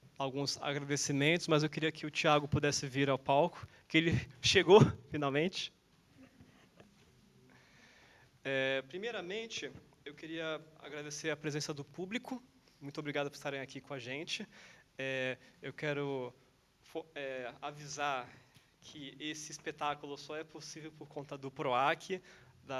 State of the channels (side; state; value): both; identical; correlation 1.00